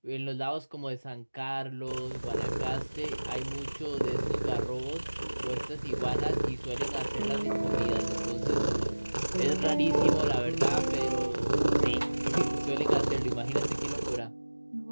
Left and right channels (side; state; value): both; inverted; correlation -1.00